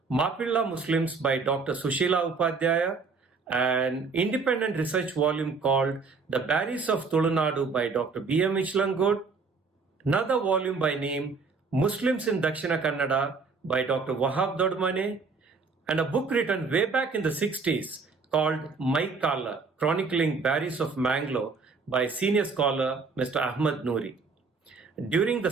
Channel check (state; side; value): quieter; left; 4.6 dB